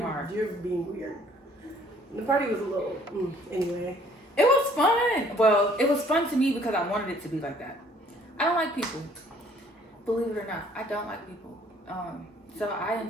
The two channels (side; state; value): both; normal; correlation 0.59